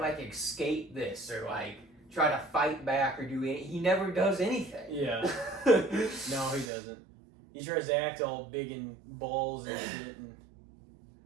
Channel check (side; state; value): left; drops out; at 6.7 s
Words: escape this or, like, try to fight back or do anything. He never does anything. Yeah. No, he doesn't. He tries to act all big and balls and shit. And...